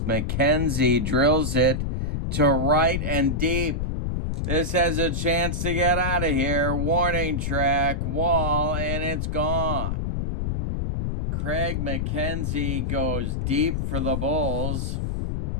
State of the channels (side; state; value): left; noise; rumble, 1 dB below the sound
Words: McKenzie drills it to right and deep. This has a chance to get out of here. Warning track, wall, and it's gone. Craig McKenzie goes deep for the Bulls.